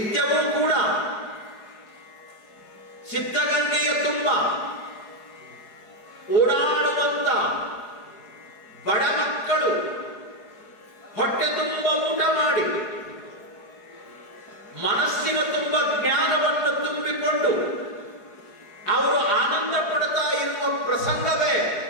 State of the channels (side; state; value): right; late; 4.7 ms